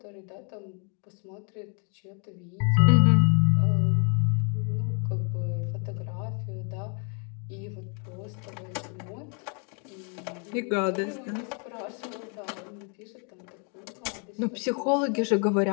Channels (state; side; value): quieter; right; 38.8 dB